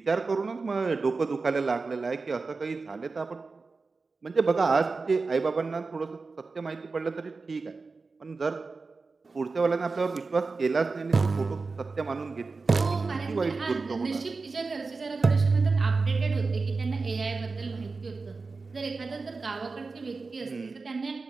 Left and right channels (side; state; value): left; quieter; 4.1 dB